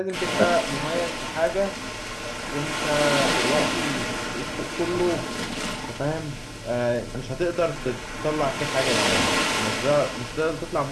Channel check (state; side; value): identical; both; correlation 1.00